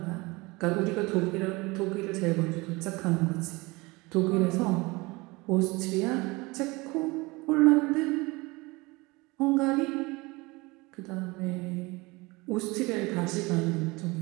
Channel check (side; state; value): left; quieter; 23.9 dB